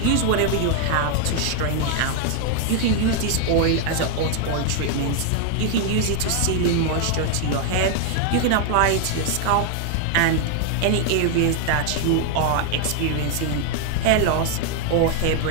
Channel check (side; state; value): both; different; correlation 0.00